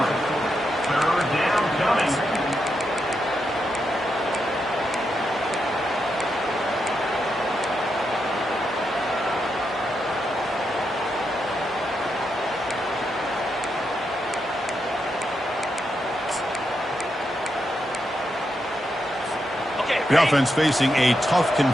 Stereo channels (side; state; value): both; normal; correlation 0.84